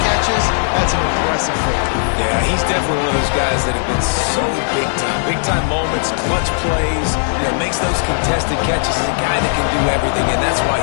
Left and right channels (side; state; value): right; silent; digital silence